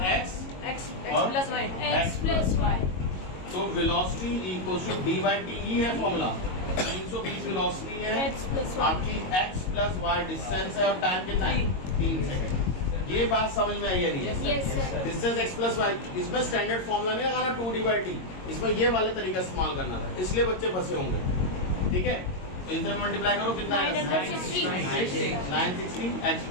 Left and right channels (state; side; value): late; right; 22 ms